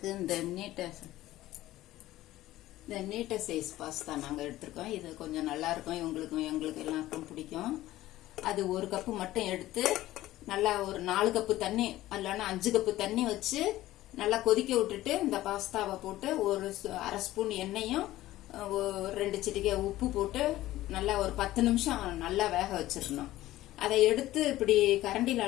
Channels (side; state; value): right; quieter; 15.6 dB